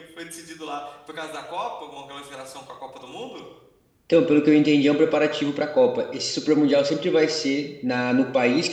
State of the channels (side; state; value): both; identical; correlation 1.00